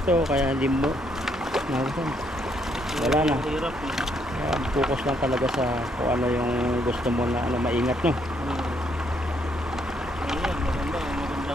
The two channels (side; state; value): both; normal; correlation 0.72